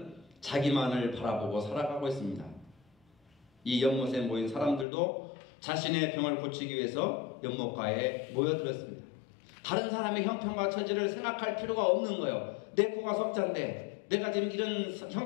자기만을 바라보고 살아가고 있습니다. 이 연못에 모인 사람들도 자신의 병을 고치기 위해서 연못가에 모여들었습니다. 다른 사람의 형편과 처지를 생각할 필요가 없는 거예요. 내 코가 석자인데 내가 지금 이런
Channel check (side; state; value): right; drops out; at 4.9 s